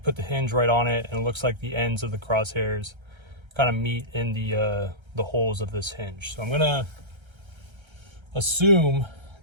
put the hinge right on it, and it looks like the ends of the crosshairs kind of meet in the holes of this hinge. So I'm gonna assume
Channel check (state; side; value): late; left; 1.3 ms